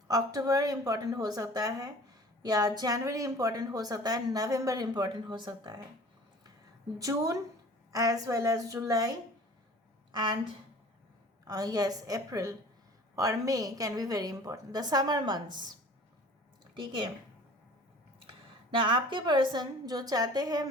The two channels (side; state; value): both; normal; correlation 0.45